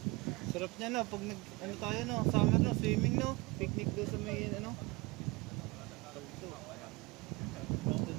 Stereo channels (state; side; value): quieter; left; 24.0 dB